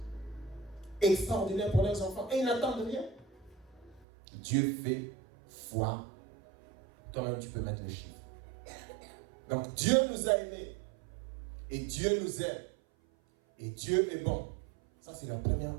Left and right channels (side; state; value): left; drops out; at 4.0 s